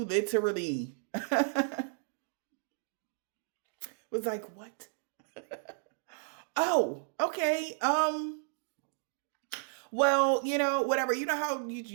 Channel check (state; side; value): silent; left; digital silence